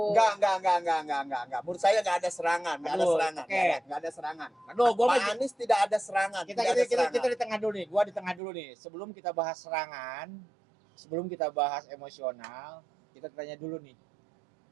Enggak. Menurut saya enggak ada serangan, enggak ada Aduh, serangan. oke. Enggak ada serangan. Aduh, gua Pak Anies tidak ada serangan. kita di tengah dulu nih. Gua di tengah dulu nih. Sebelum kita bahas serangan, sebelum kita bahas emosional, kita tanya dulu nih.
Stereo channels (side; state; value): left; drops out; at 8.4 s